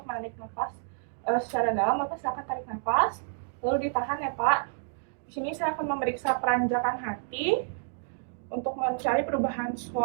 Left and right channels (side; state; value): left; silent; digital silence